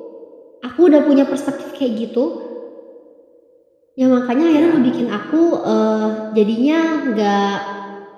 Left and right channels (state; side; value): identical; both; correlation 1.00